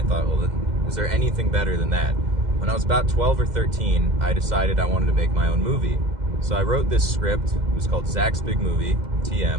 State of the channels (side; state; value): left; late; 2.0 ms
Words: thought, well, is there anything better than that? When I was about 12 or 13, I decided I wanted to make my own movie. So I wrote this script. It was called Zach's Big Movie,